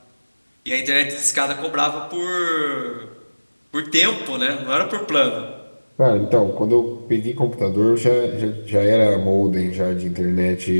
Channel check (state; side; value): inverted; both; correlation -1.00